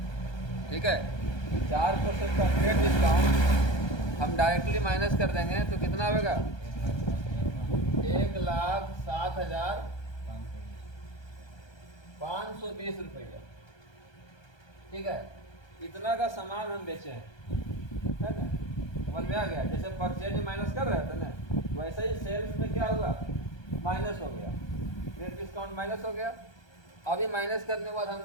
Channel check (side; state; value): right; late; 1.2 ms